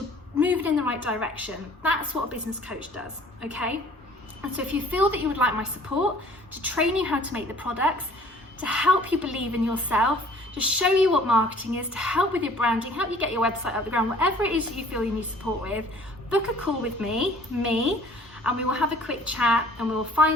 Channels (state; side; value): normal; both; correlation 0.52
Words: moving in the right direction. That's what a business coach does, okay? And so if you feel that you would like my support to train you how to make the products, to help you believe in yourself, to show you what marketing is, to help with your branding, help you get your website off the ground, whatever it is that you feel you need support with, book a call with me, and we will have a quick chat and we will